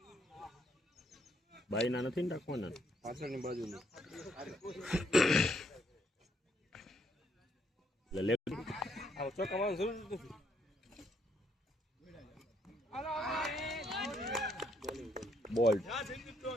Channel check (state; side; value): normal; both; correlation 0.72